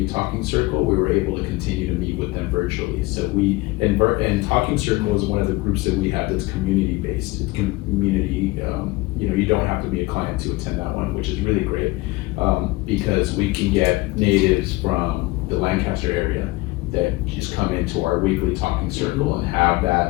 Talking Circle, we were able to continue to meet with them virtually. So and Talking Circle is one of the groups that we have that's community based. It's community, you know, you don't have to be a client to attend that one, which is really great, because we can get natives from the Lancaster area that just come into our weekly Talking Circle and have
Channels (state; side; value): quieter; right; 21.5 dB